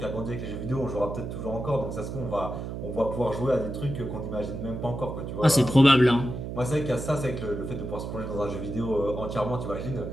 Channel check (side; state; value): right; noise; hum, 6 dB below the sound